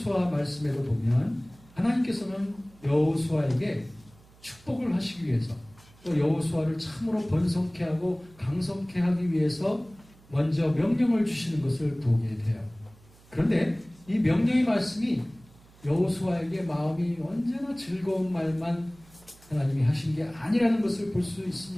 말씀에도 보면 하나님께서는 여호수아에게 축복을 하시기 위해서 또 여호수아를 참으로 번성케 하고 강성케 하기 위해서 먼저 명령을 주시는 것을 보게 돼요. 그런데 이 명령의 말씀이 여호수아에게 마음이 언제나 즐거운 말만 하나님이 하신 게 아니라는 것을 볼 수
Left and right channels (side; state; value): right; noise; hum, 26 dB below the sound